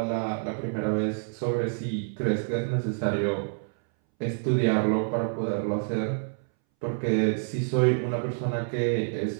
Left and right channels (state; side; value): silent; left; 60 dB below the other